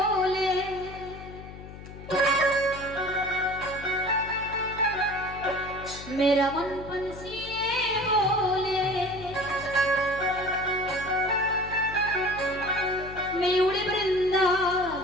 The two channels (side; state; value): left; noise; hum, 14 dB below the sound